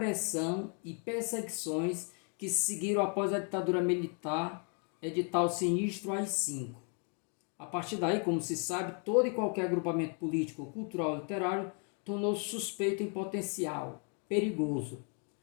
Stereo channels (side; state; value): right; quieter; 39.8 dB